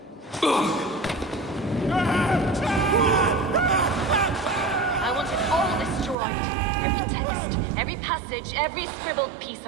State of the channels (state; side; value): drops out; left; at 6.2 s